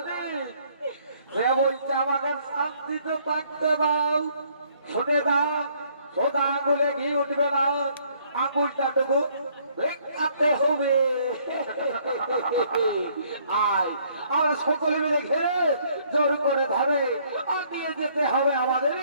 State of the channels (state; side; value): inverted; both; correlation -0.64